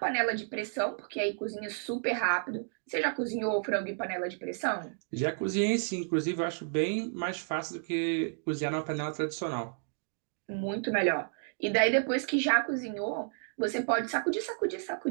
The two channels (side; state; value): left; silent; digital silence